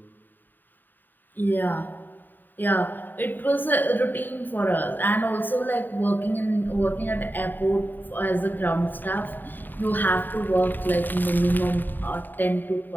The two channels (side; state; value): right; late; 0.091 ms